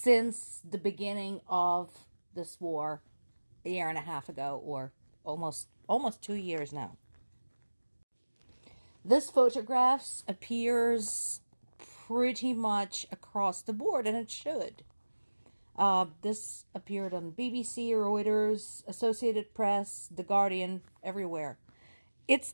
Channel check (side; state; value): both; inverted; correlation -1.00